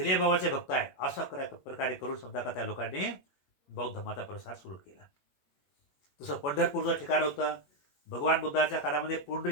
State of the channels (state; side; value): late; right; 21 ms